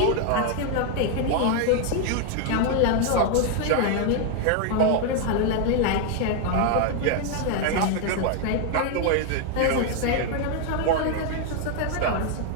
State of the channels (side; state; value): both; different; correlation 0.01